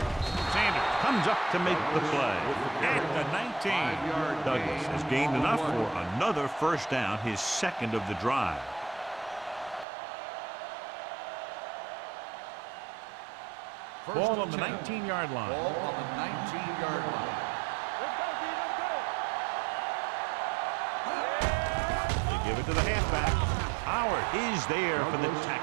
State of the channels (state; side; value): drops out; left; at 9.9 s